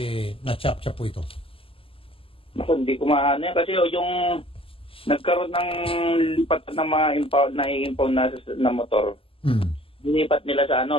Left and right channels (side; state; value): right; late; 0.26 ms